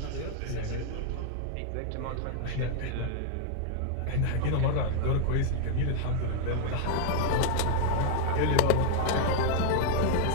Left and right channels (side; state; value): both; different; correlation 0.00